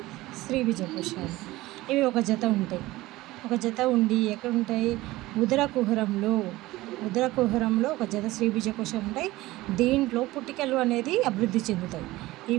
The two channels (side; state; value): left; quieter; 18.4 dB